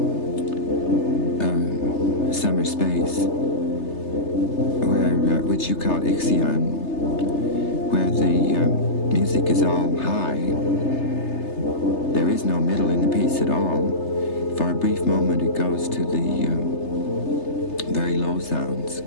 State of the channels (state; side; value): late; right; 3.3 ms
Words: Summer Space, which you called Ixion, where the music is all high. There is no middle in the piece at all. For a brief moment it goes to the very low sounds